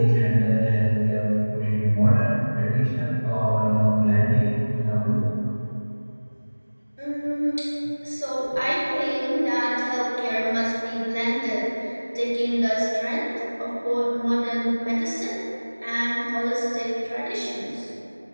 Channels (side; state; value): both; inverted; correlation -1.00